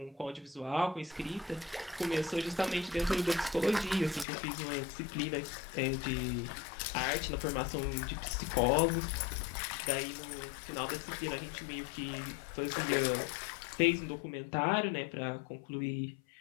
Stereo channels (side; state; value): right; drops out; at 4.2 s